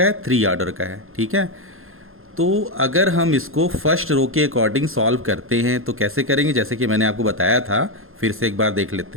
है? 3 ऑर्डर का है, ठीक है। तो अगर हम इसको फर्स्ट रो के अकॉर्डिंग सॉल्व करते हैं तो कैसे करेंगे, जैसे कि मैंने आपको बताया था, फिर से एक बार देख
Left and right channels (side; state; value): left; late; 0.61 ms